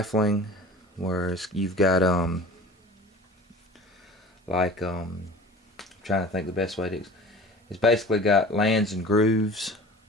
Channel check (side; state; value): both; normal; correlation 0.40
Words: whereas you've got I'm trying to think the best way to. It's basically got lands and grooves